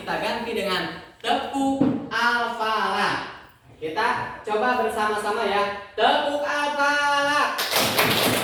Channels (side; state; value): both; identical; correlation 1.00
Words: ganti dengan tepuk Al-Falaq. Kita coba bersama-sama ya. Tepuk Al-Falaq.